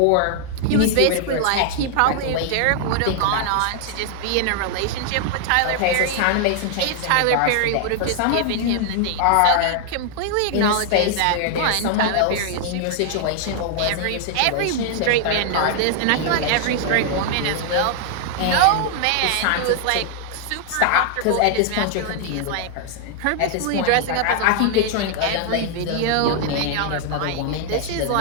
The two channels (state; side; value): different; both; correlation 0.00